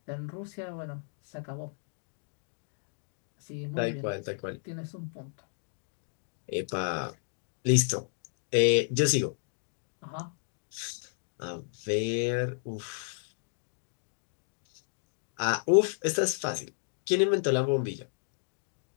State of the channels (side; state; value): right; silent; digital silence